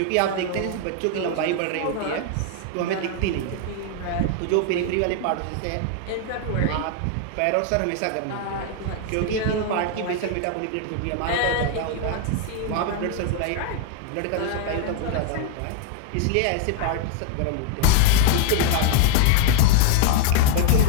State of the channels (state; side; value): different; both; correlation 0.00